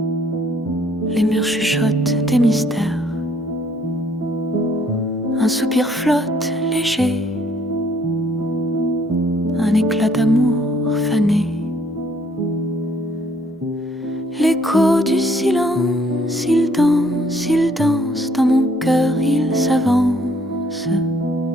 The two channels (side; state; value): both; normal; correlation 0.64